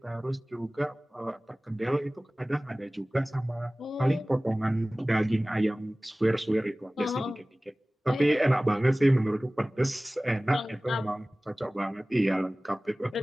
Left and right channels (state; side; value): normal; both; correlation 0.98